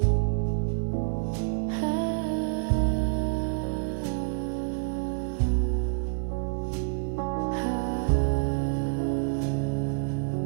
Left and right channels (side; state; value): left; silent; digital silence